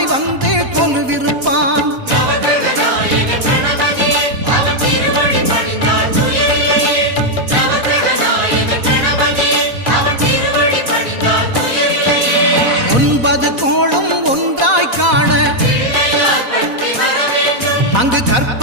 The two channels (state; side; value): late; left; 4.1 ms